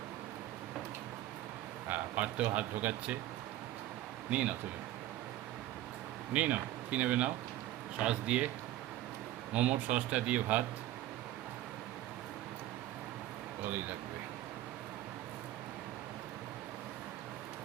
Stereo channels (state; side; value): quieter; left; 14.2 dB